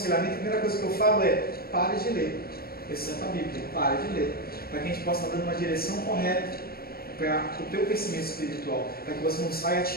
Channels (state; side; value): late; right; 0.44 ms